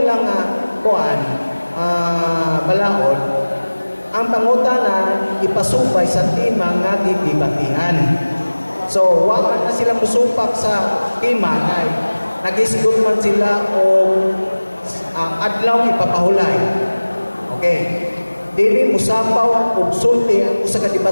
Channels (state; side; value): inverted; both; correlation -1.00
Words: kuan, balaod, ang pangutana ipasupay sa timang nga gidibatihan. So, wag na sila musupak sa timang ay nag-isgot man sila o adlaw ipapahulay. Okay. Dili musapaw og sulti ang usa ka